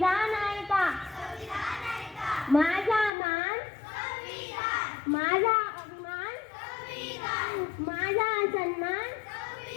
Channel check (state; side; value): drops out; right; at 3.1 s